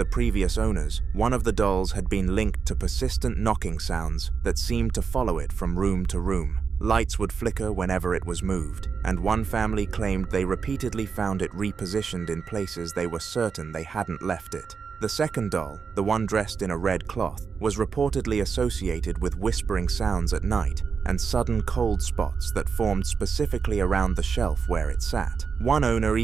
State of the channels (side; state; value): left; quieter; 5.8 dB